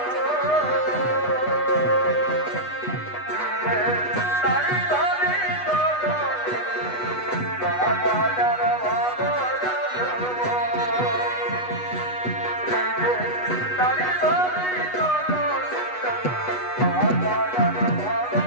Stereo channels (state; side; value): late; right; 8.2 ms